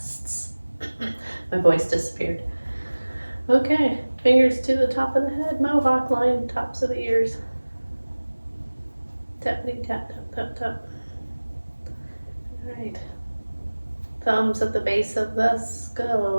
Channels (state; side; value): inverted; both; correlation -1.00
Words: My voice disappeared. Okay, fingers to the top of the head, mohawk line, tops of the ears. Tappity tap, tap, tap, tap. All right. Thumbs at the base of the